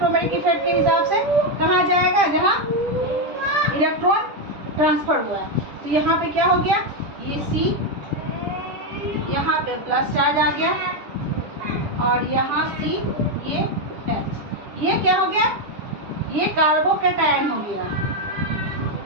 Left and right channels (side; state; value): left; late; 10 ms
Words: इफेक्ट के हिसाब से कहाँ जाएगा, जहाँ इलेक्ट्रॉन ट्रांसफर हुआ है। तो यहाँ पे क्या हो गया, ये C, यहाँ पे प्लस चार्ज आ गया, और यहाँ C, ये H, ये क्या हो गया, ये कार्बोकेटायन हो गया,